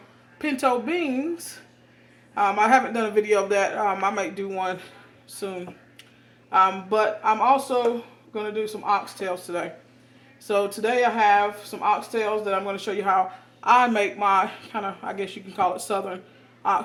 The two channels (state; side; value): identical; both; correlation 1.00